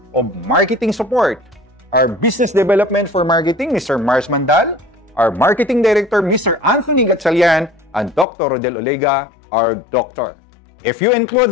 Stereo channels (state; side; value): drops out; right; at 8.2 s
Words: of marketing support. Our Business Development for Marketing, Mr. Mars Mandal, our Marketing Director, Mr. Anthony Gatchalian, and Dr. Rodel Olega, our doctor. If you include